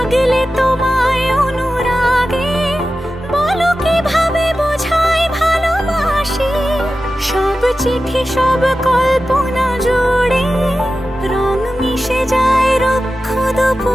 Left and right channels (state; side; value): normal; both; correlation 0.93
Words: তোমায় অনুরাগে, বলো কিভাবে বোঝাই ভালোবাসি। সব চিঠি সব কল্পনা জুড়ে রং মিশে যায় রুক্ষ